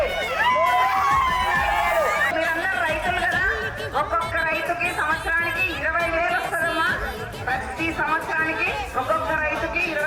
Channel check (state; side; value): identical; both; correlation 1.00